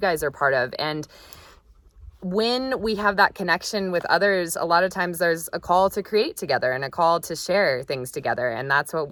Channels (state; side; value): identical; both; correlation 1.00